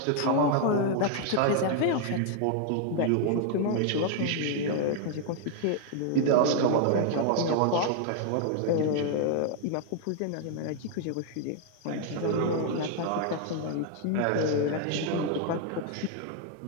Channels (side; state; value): both; different; correlation 0.00